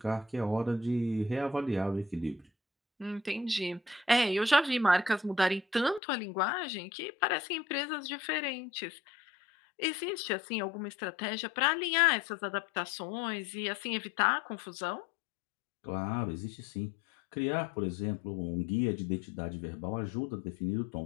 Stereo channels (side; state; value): right; drops out; at 6.0 s